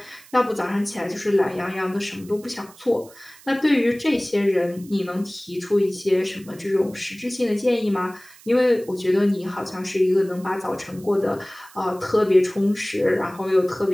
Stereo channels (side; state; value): right; noise; hiss, 23 dB below the sound